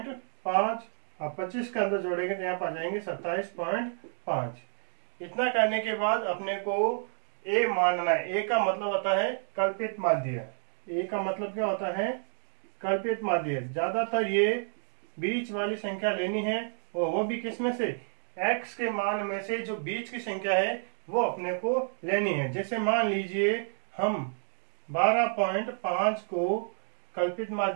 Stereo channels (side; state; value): left; silent; 58 dB below the other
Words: और 25 के अंदर जोड़ेंगे तो यहाँ पर आ जाएंगे 27.5। इतना करने के बाद अपने को ए मानना है। ए का मतलब होता है कल्पित माध्य। ए का मतलब क्या होता है? कल्पित माध्य। ज्यादातर ये बीच वाली संख्या लेनी है, और वो भी किस में से? x के मान में से जो बीच की संख्या है वो अपने को लेनी है। जैसे मान लीजिए हम 12.5 को कल्पित